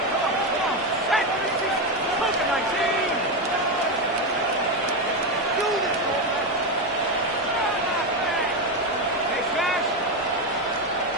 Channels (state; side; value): normal; both; correlation 0.11